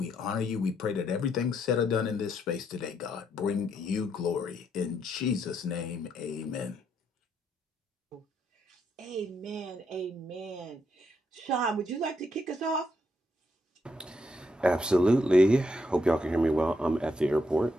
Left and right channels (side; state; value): both; normal; correlation 0.76